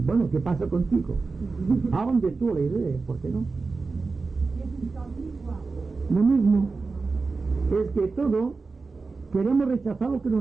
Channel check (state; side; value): quieter; left; 4.2 dB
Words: Bueno, ¿qué pasa contigo? Hablan de tú la idea, ¿por qué no? Lo mismo es que todo queremos rechazar lo que no